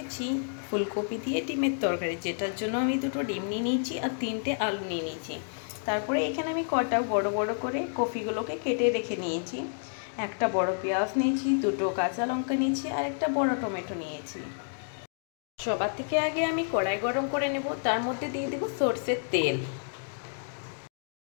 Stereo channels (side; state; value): right; silent; digital silence